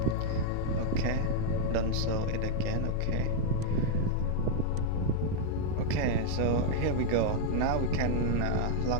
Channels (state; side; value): different; both; correlation -0.01